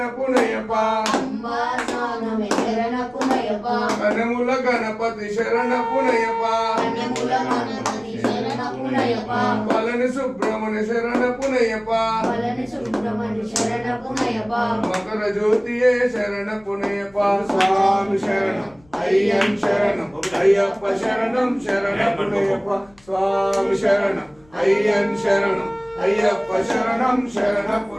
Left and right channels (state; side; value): noise; left; rumble, 30 dB below the sound